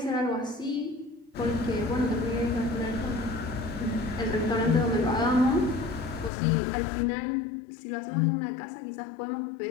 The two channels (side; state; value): right; drops out; at 6.3 s